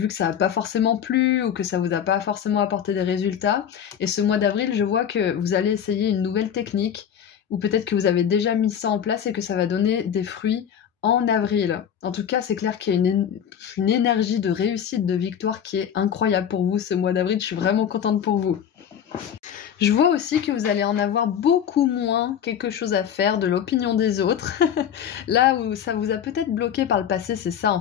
que ça n'a pas forcément plu ou que ça vous a pas forcément apporté des résultats. Et ce mois d'avril, je vois que vous allez essayer une nouvelle technique ou peut-être que vous avez déjà mis ça en place et que ça va donner des fruits en avril. En tout cas, c'est clair qu'il y a une énergie de réussite, de victoire qui est incroyable pour vous ce mois d'avril. Je suis vraiment contente pour vous. Je vois aussi que vous allez en avoir beaucoup moins quelque chose à faire de l'opinion des autres. Là où ça vous a peut-être bloqué par le passé, c'est ça en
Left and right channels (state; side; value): quieter; right; 8.8 dB